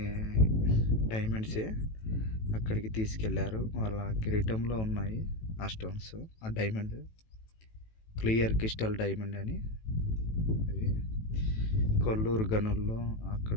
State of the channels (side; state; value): right; late; 18 ms